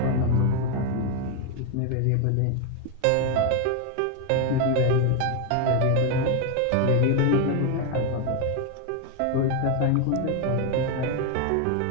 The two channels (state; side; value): different; both; correlation 0.01